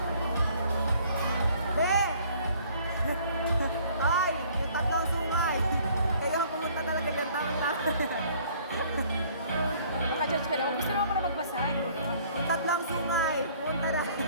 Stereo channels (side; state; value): both; inverted; correlation -0.57